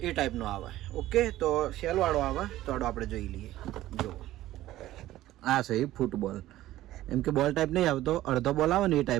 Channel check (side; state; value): left; quieter; 15.0 dB